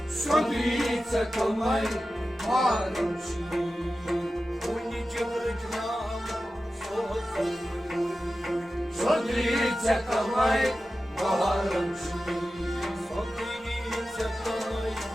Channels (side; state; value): both; normal; correlation 0.93